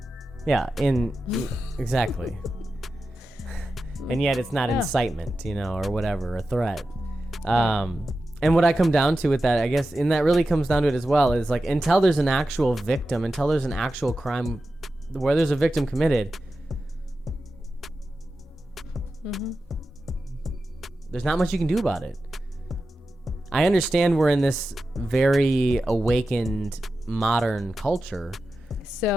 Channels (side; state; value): both; normal; correlation 0.92